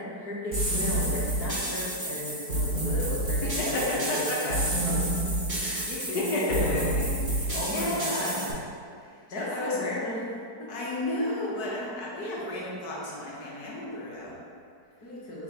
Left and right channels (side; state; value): right; late; 4.6 ms